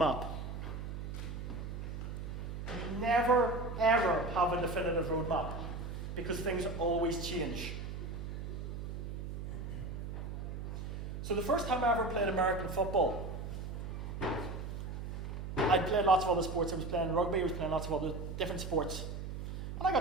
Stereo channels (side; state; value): right; noise; hum, 6 dB below the sound